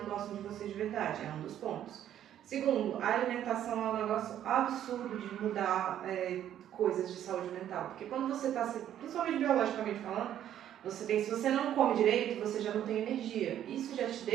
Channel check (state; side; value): quieter; left; 10.9 dB